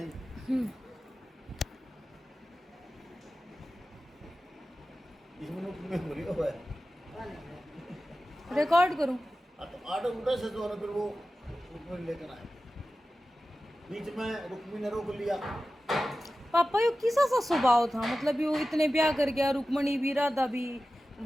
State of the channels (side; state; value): both; normal; correlation 0.94